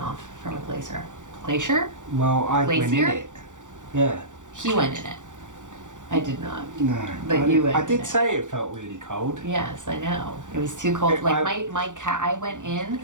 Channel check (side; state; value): left; late; 0.86 ms